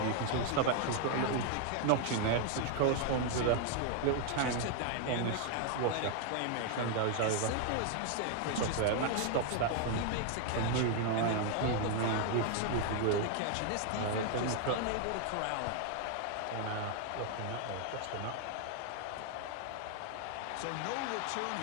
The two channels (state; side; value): different; both; correlation 0.00